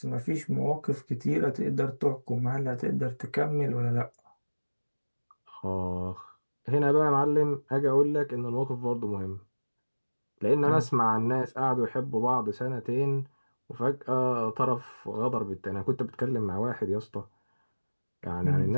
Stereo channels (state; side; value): inverted; both; correlation -1.00